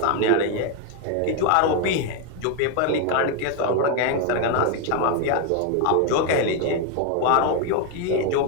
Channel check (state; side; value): different; both; correlation 0.01